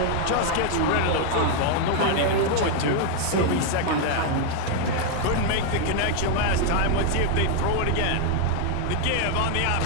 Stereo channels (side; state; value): both; different; correlation 0.00